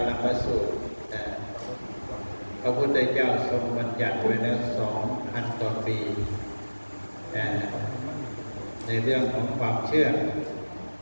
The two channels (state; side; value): inverted; both; correlation -1.00